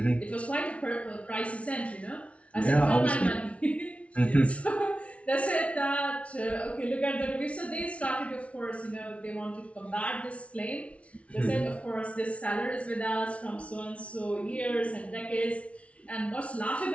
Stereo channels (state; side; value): late; right; 0.063 ms